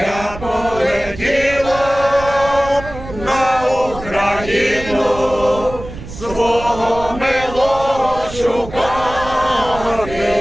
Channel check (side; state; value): right; noise; rumble, 13 dB below the sound